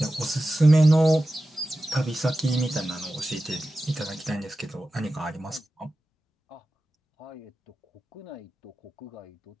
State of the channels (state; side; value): normal; both; correlation 0.94